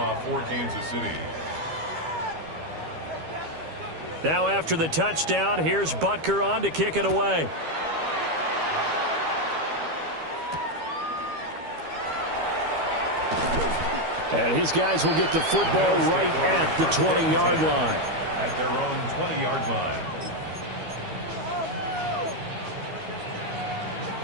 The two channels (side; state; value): left; late; 12 ms